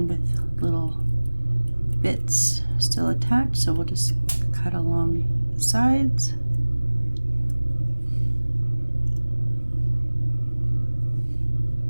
with little bits still attached, so we'll just cut along the sides.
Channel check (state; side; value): inverted; both; correlation -1.00